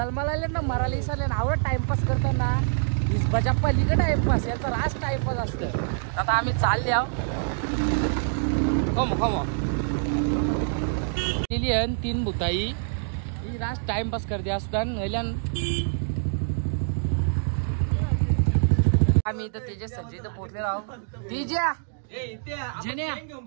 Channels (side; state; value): left; silent; digital silence